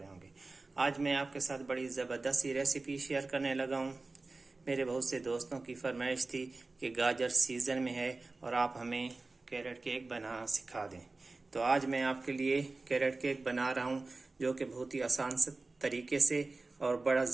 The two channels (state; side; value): quieter; left; 3.5 dB